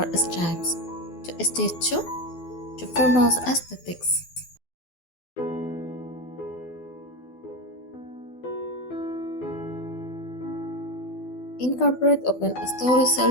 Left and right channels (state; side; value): late; right; 12 ms